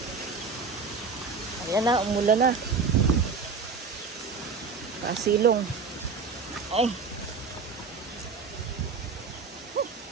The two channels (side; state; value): left; quieter; 4.9 dB